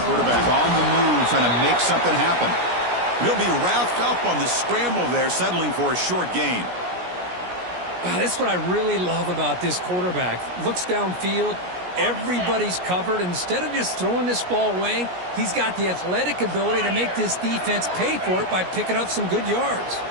Quarterback on the move, trying to make something happen. He'll be wrapped up on the scramble there, settling for a short gain. That's what I really love about this quarterback. Looks downfield, everybody's covered. Instead of just throwing this ball away, he's got the athletic ability to make this defense pay for it by picking up some good yards.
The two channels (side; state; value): left; late; 17 ms